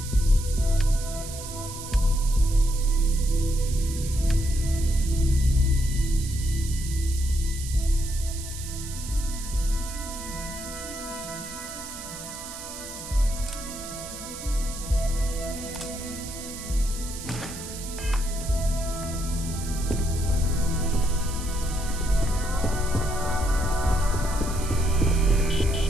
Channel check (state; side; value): noise; right; hiss, 11 dB below the sound